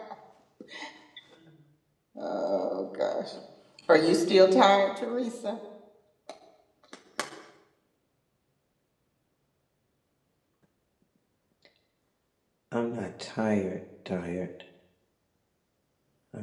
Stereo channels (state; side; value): identical; both; correlation 1.00